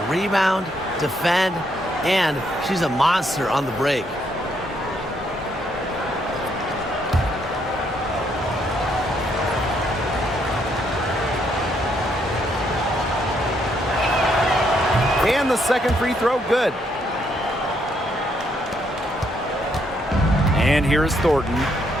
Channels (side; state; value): both; normal; correlation 0.73